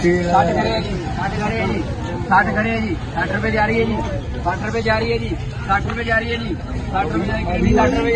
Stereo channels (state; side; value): identical; both; correlation 1.00